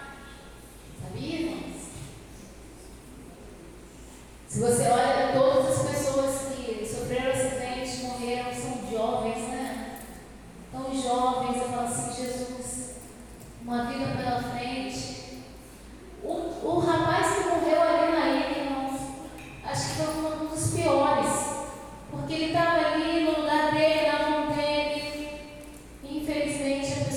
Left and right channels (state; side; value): identical; both; correlation 1.00